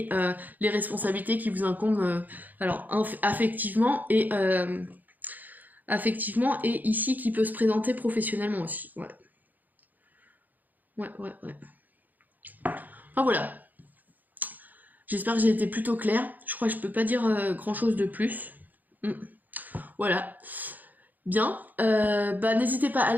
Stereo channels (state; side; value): late; left; 0.083 ms